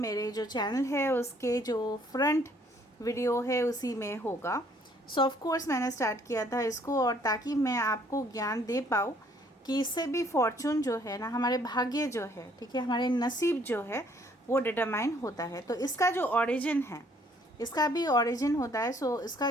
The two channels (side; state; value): both; normal; correlation 0.63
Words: जो चैनल है उसके जो फ्रंट वीडियो है उसी में होगा। सो ऑफ कोर्स मैंने स्टार्ट किया था इसको, और ताकि मैं आपको ज्ञान दे पाऊँ कि इससे भी फॉर्चून जो है ना, हमारे भाग्य जो है, ठीक है, हमारे नसीब जो है वो डिटरमाइन होता है। तो इसका जो ओरिजिन है, इसका भी ओरिजिन होता है। सो इसका